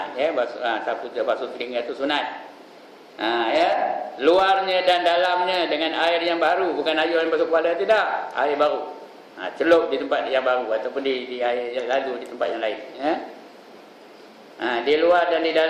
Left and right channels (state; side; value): identical; both; correlation 1.00